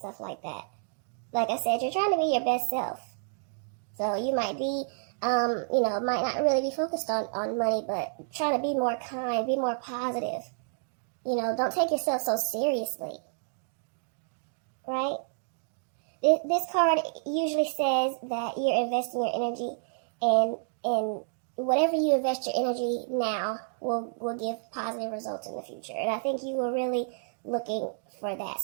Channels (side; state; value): left; silent; digital silence